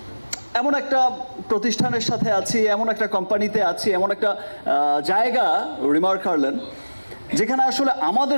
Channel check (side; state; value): both; inverted; correlation -1.00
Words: এমন একটা প্রতিষ্ঠানের সাথে আছি, এমন একটা কোম্পানিতে আছি, এমন একটা জায়গা রিমার্ক হারলেন, যেখানে আসলে